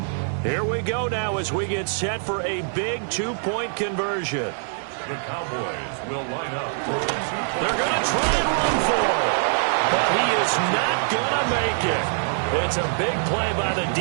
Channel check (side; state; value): left; silent; 63 dB below the other